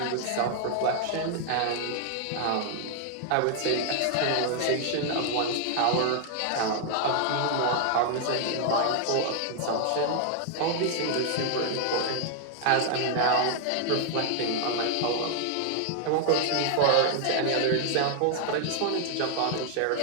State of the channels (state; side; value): different; both; correlation 0.00